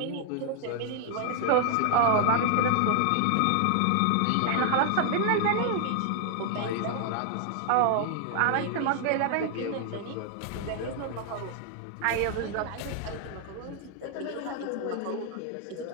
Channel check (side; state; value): both; different; correlation 0.00